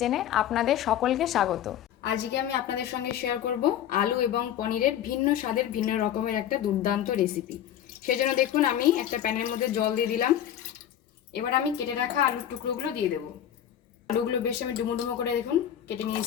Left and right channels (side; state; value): right; quieter; 10.6 dB